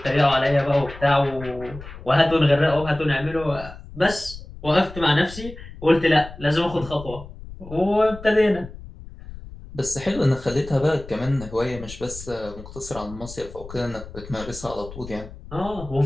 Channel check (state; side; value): noise; left; rumble, 14 dB below the sound